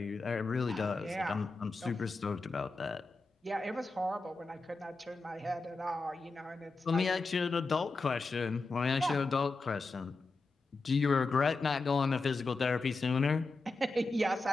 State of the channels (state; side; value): quieter; right; 3.5 dB